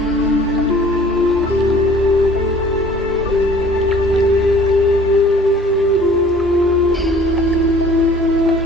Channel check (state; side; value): normal; both; correlation 0.51